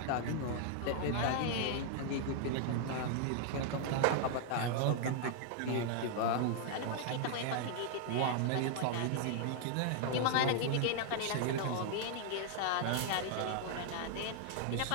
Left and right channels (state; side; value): different; both; correlation 0.00